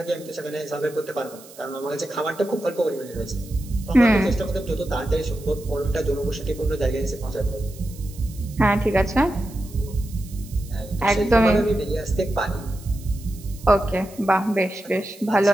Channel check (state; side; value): noise; right; hiss, 20 dB below the sound